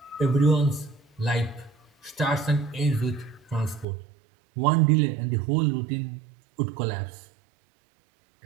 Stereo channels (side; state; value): left; drops out; at 3.9 s